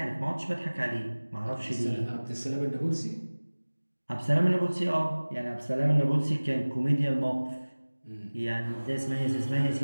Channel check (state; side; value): inverted; both; correlation -1.00